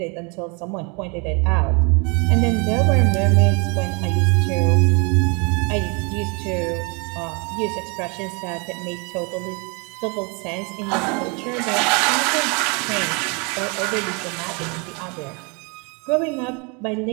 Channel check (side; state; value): left; quieter; 32.0 dB